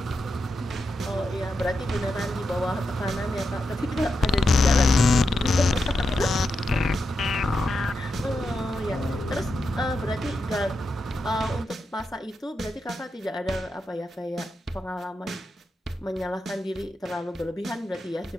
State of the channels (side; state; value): both; normal; correlation 0.87